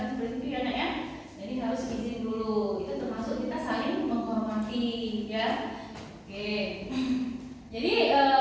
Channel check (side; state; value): both; identical; correlation 1.00